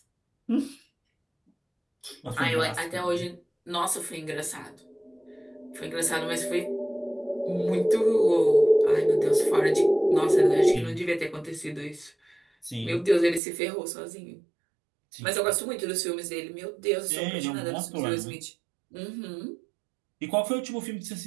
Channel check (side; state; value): left; drops out; at 13.4 s